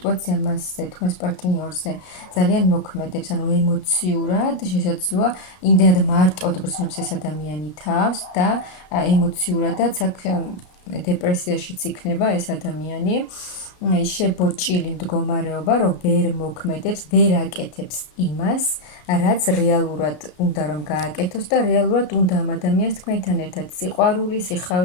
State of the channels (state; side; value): late; right; 33 ms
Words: მასზე, თქვენს პარტნიორზე ძალიან მოქმედებს, ანუ ემოციურად შესაძლოა იმდენად მარტოდ გრძნობს ეს ადამიანი თავს და ემოციურადაც აქ დეპრესიაშიც იქნება ეს ადამიანი. შებოჭილი მდგომარეობა, რომ ვერ მოქმედებს, ვერ აკეთებს იმას, რაც რეალურად უნდა რომ გააკეთოს და რეალურად უნდა ამ ადამიანს თქვენთან ერთად სიყვარული,